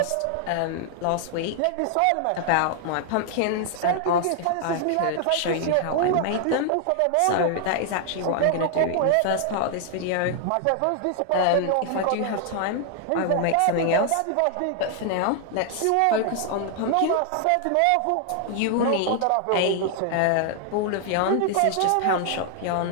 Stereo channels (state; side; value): different; both; correlation 0.00